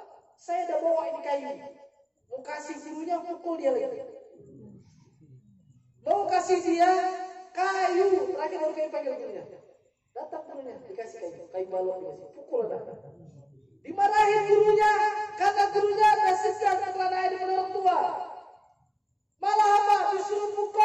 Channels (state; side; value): identical; both; correlation 1.00